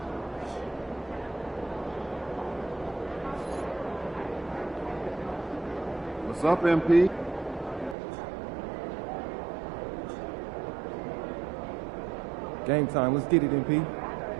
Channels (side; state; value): left; drops out; at 8.0 s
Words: What's up, MP? Game time. Let's get it, MP.